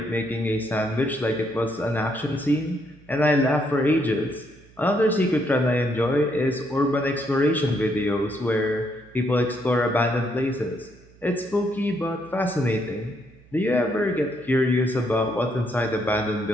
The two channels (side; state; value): right; noise; hum, 26 dB below the sound